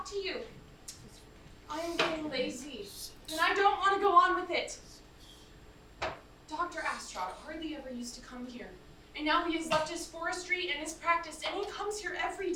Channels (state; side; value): identical; both; correlation 1.00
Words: to you. I am getting lazy, and I don't want to go on with it. Dr. Astrod hardly ever used to come here, and now he has left his forestry and his practice, and he comes here every